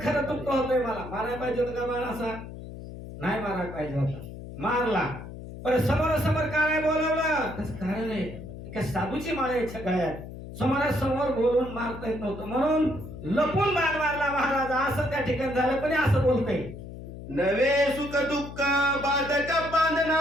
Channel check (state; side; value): noise; left; hum, 12 dB below the sound